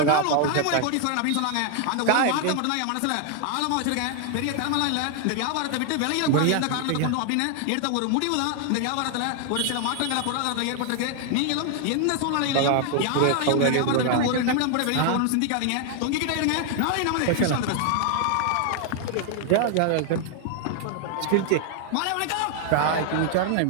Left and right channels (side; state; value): both; different; correlation 0.00